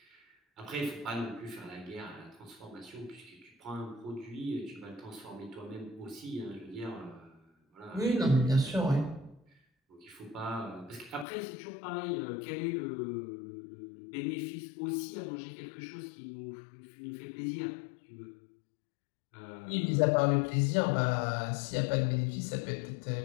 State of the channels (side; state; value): right; drops out; at 11.2 s